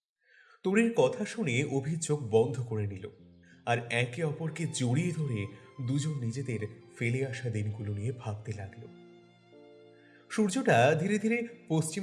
তরির কথা শুনে অভি চোখ বন্ধ করে নিল, আর একে অপরকে জড়িয়ে ধরে দুজন নিজেদের ফেলে আসা দিনগুলো নিয়ে ভাবতে লাগলো। সূর্যটা ধীরে ধীরে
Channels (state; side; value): identical; both; correlation 1.00